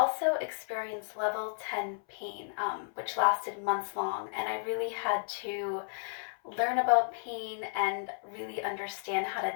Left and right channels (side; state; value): right; silent; 56 dB below the other